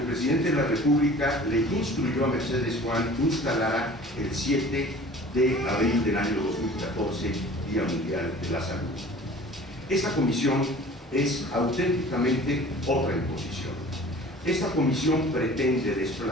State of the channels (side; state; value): both; normal; correlation 0.45